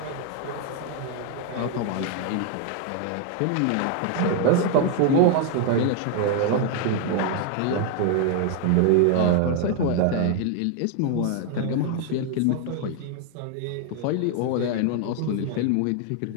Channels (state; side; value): different; both; correlation 0.00